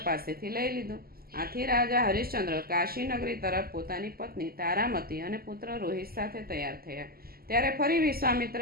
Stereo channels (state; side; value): late; left; 0.44 ms